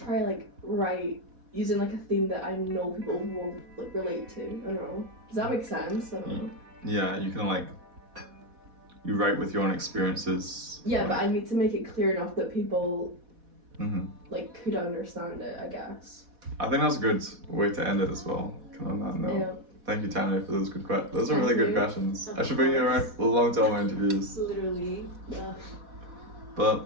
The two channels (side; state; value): left; late; 4.1 ms